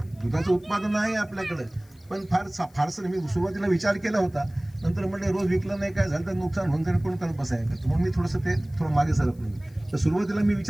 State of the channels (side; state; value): left; noise; hiss, 30 dB below the sound